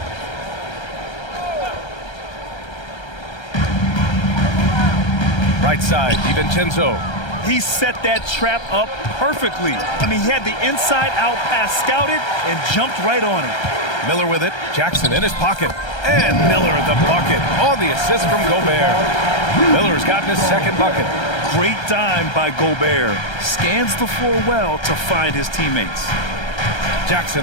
Right side, DiVincenzo. He set that trap up perfectly. I mean, he had the inside-out pass scouted and jumped right on it. Miller with it. Jackson in his pocket. And Miller at the bucket on the assist from Gobert. Miller's gotten his second bucket. Great dime by Gobert. Scans the floor well to find his teammates.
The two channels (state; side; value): late; right; 1.3 ms